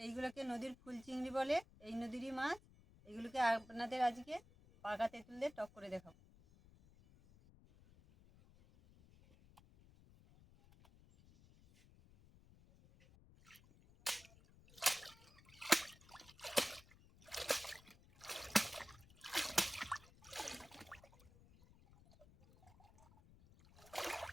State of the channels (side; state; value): left; noise; rumble, 23 dB below the sound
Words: এইগুলোকে নদীর ফুল চিংড়ি বলে, এই নদীরই মাছ। এগুলোকে আপনাদের আজকে পাকা তেঁতুল দিয়ে টক করে দেখাবো।